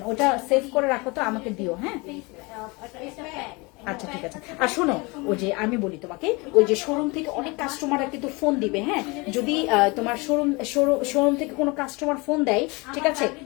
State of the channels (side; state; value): right; quieter; 26.6 dB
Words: ওটা সেভ করে রাখো তো, আমাকে দিও। হ্যাঁ আচ্ছা ঠিক আছে। আর শোনো, ওই যে আমি বলি তোমাকে, ওই যে শোরুম থেকে অনেক কাস্টমাররা কিন্তু ফোন দিবে। হ্যাঁ যদি তোমার শোরুম থেকে কোনো কাস্টমার ফোন দেয়, ঠিক আছে,